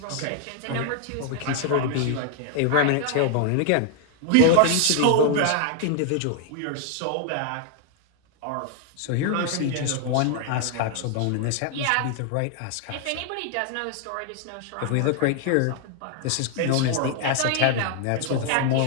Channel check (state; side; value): different; both; correlation 0.00